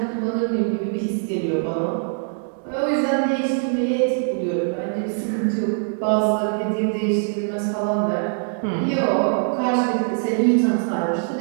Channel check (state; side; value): silent; left; 64 dB below the other